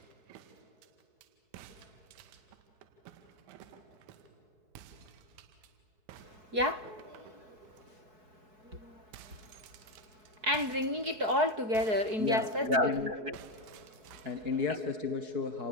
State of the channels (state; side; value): late; left; 4.7 ms